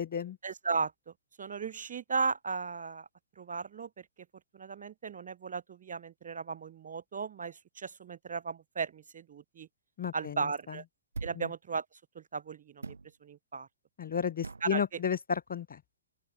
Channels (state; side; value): inverted; both; correlation -0.57